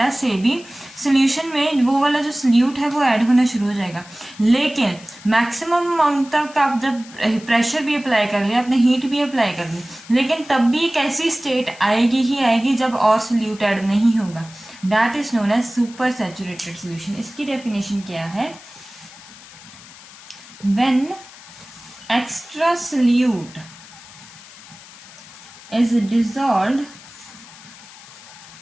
से भी सोल्यूशन में वो वाला जो सोल्यूट है वो ऐड होना शुरू हो जाएगा। लेकिन मैक्सिमम अमाउंट तक आप जब प्रेशर भी अप्लाई कर लिया, आपने हीट भी अप्लाई कर ली, लेकिन तब भी एक ऐसी स्टेट आएगी ही आएगी जब और सोल्यूट ऐड नहीं होगा। That is known as super saturated solution. इसकी डेफिनेशन क्या है? When extra solute is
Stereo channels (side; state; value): left; noise; hiss, 19 dB below the sound